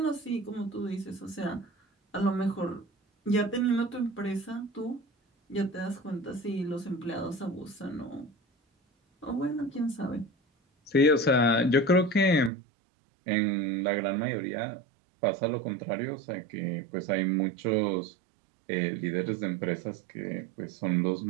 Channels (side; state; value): left; drops out; at 12.5 s